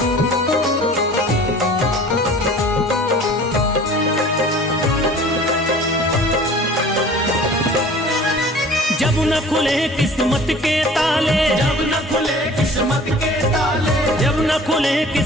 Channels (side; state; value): both; normal; correlation 0.46